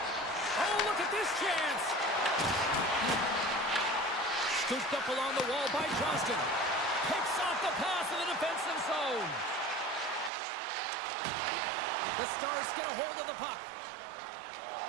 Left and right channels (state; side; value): drops out; left; at 10.3 s